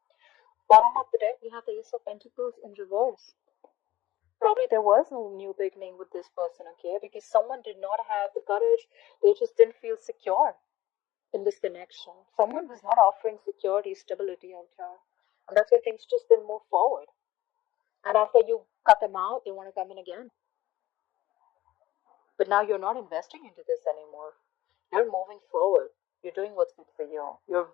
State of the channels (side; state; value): right; quieter; 15.5 dB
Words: Bottom of the deck, we have the Ace of Pentacles in reverse. Probably there was no new beginning with this person, okay? Because someone did not have the courage. They just didn't feel secure in this connection. Someone was not offering security, stability out here. And that's why things just didn't move forward. And after you cut them out, they want to come in again. But now you're not investing into this anymore. You're moving forward. You're doing what's good for you. You're